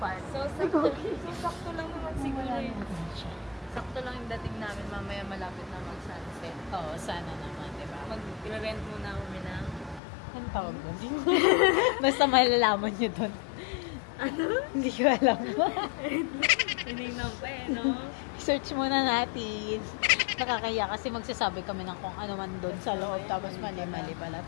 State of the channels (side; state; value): right; drops out; at 10.0 s